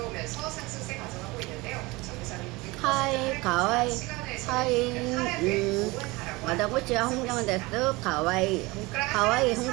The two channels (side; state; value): left; quieter; 22.9 dB